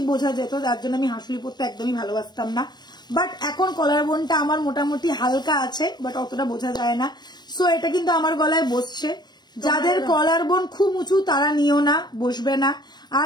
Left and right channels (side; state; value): right; late; 0.21 ms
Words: বোঝা যেত, যার জন্য আমি হাসুলি পরতে একদমই ভালোবাসতাম না। বাট এখন কলার বোনটা আমার মোটামুটি হালকা আছে, বাট অতটা বোঝা যায় না। সো এটা কিন্তু আমার গলায় বসছে। যাদের কলার বোন খুব উঁচু তারা নিও না, বসবে না।